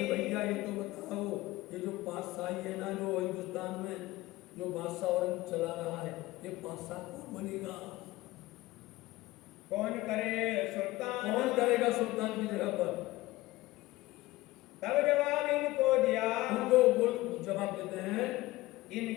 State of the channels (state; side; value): quieter; right; 18.6 dB